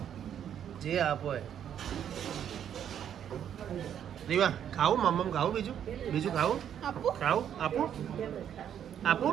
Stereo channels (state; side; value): quieter; left; 9.4 dB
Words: જે આપો એ. રીવા ખાવું મમ્મ ખાવું બીજું બીજું ખાવું આપું ખાવું આપું આપું